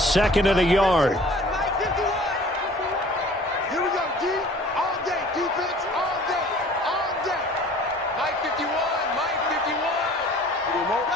and a yard.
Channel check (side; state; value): both; normal; correlation 0.48